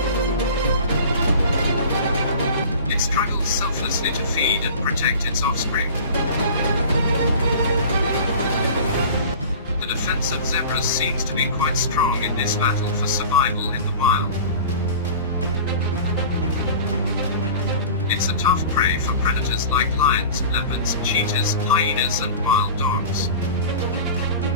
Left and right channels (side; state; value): both; inverted; correlation -0.39